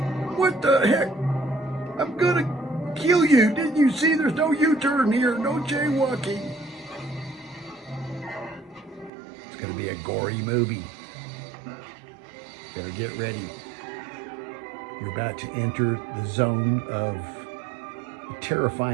What the heck? I'm gonna kill you. Didn't you see there's no U-turn here, no jaywalking? It's gonna be a gory movie. Better get ready. You're about to enter the zone of a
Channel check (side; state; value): left; drops out; at 9.1 s